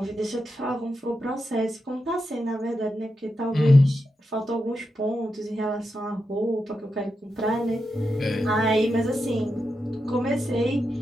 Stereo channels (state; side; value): normal; both; correlation 0.87